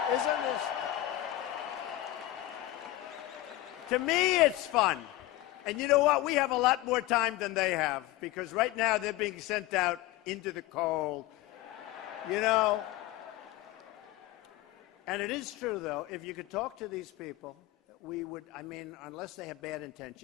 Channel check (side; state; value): right; quieter; 16.1 dB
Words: Isn't this? To me, it's fun. And you know what? We have a lot more time than they have, because right now they're being sent out into the cold. You know? And it is true, though, if you could talk to these people, we would, I mean, unless they have bad